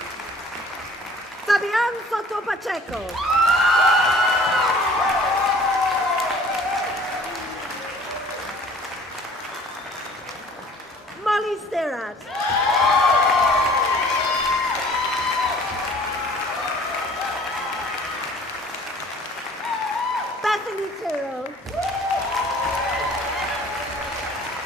Fabian Soto Pacheco. Molly Sterat. Bethany Tyrrell.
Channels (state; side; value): normal; both; correlation 0.51